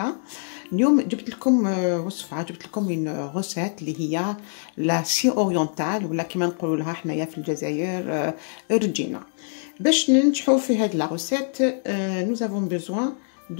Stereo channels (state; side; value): silent; right; digital silence